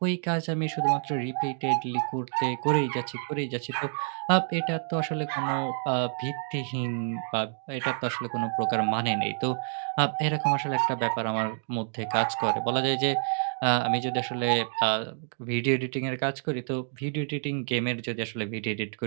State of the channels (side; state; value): left; silent; 59 dB below the other